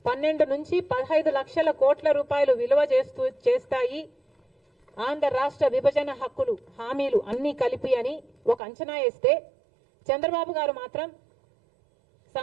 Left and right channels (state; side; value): drops out; left; at 8.6 s